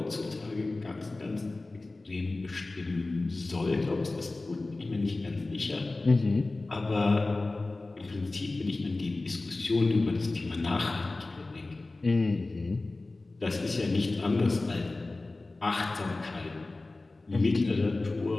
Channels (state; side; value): quieter; right; 3.2 dB